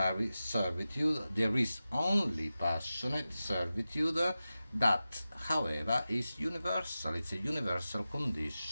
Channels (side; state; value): both; inverted; correlation -0.94